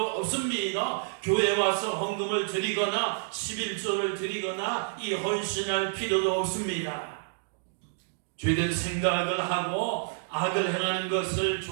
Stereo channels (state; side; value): silent; left; digital silence